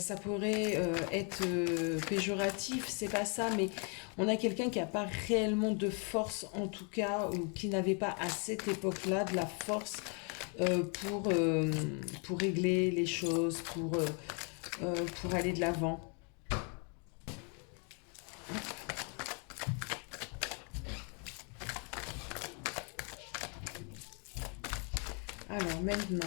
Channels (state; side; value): quieter; right; 37.5 dB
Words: pourrait être péjoratif, c'est pas ça, mais on a quelqu'un qui n'a pas réellement de force, en tout cas, ou qui n'avait pas à cette époque-là de la force pour régler les choses, pour aller de l'avant. Alors maintenant,